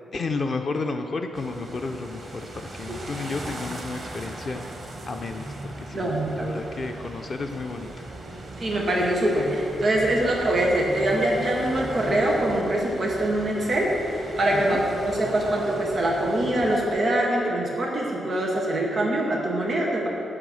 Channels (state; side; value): normal; both; correlation 0.82